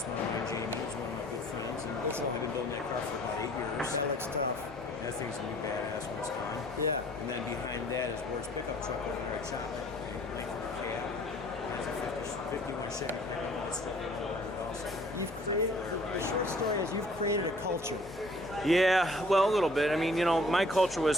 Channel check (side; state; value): both; normal; correlation 0.55